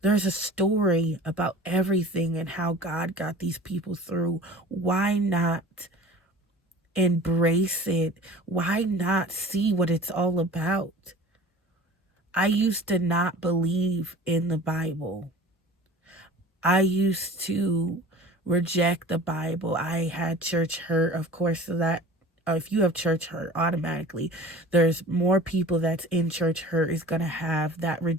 There's a story about everything and how God got these people through. Why not embrace it? Why not see what it's all about? I used to not believe in the Bible. I used to reject the Bible. I had church hurt, of course, so that if you have church hurt, automatically there's more people that's in church hurt is going to have that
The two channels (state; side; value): normal; both; correlation 0.42